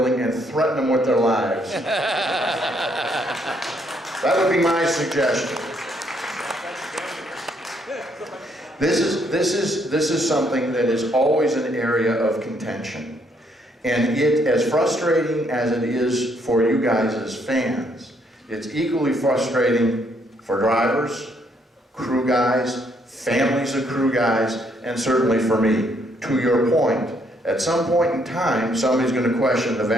and threaten them with their lives. That would be my suggestion. This is something that is always an area of contention. And as frustrating as it is for you guys as fans, it's equally frustrating for drivers, crew guys, families of crew guys, and certainly for me. To your point, at some point in time, somebody's going to question the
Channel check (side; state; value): both; normal; correlation 0.70